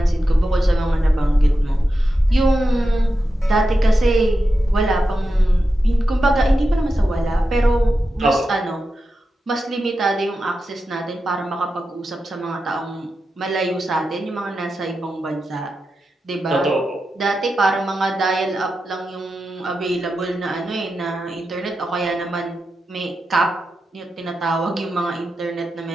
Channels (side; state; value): both; normal; correlation 0.90